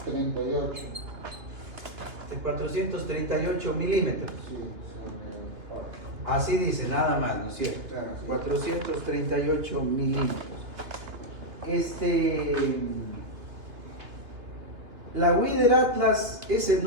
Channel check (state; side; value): late; left; 2.7 ms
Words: milímetros. Sí, Así dice, nada más, ¿no es cierto? Claro, sí. 438 milímetros. La Weather Atlas, ese